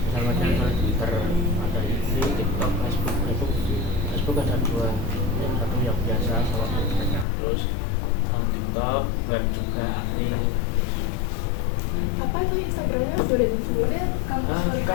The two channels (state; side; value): drops out; right; at 7.2 s